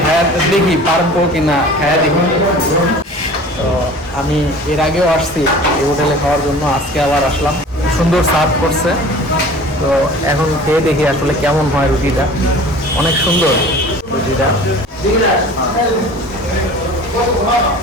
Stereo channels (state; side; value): normal; both; correlation 0.43